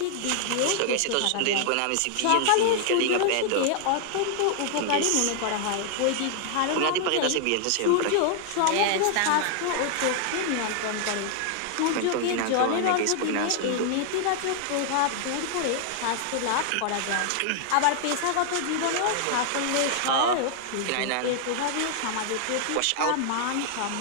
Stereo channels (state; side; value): different; both; correlation 0.00